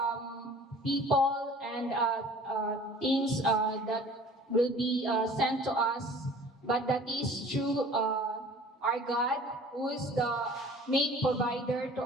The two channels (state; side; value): normal; both; correlation 0.47